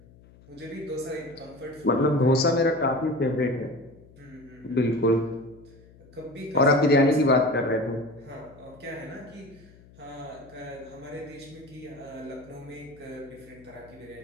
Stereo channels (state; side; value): noise; left; hum, 24 dB below the sound